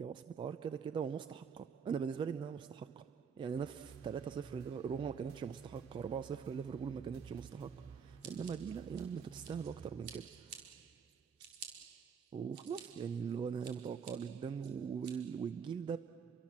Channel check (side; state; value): left; quieter; 6.5 dB